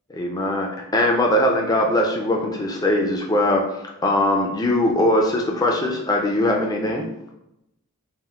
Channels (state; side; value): normal; both; correlation 0.31